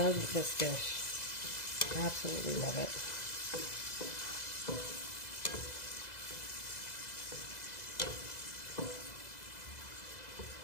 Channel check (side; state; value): right; late; 2.0 ms